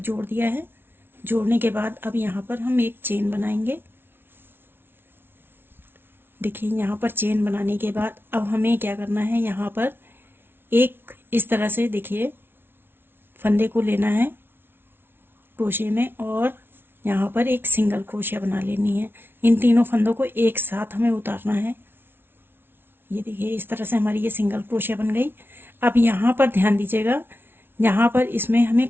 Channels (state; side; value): late; left; 0.11 ms